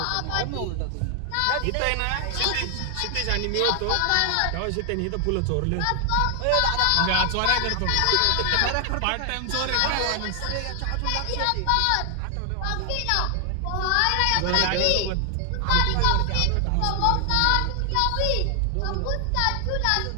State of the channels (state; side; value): different; both; correlation 0.00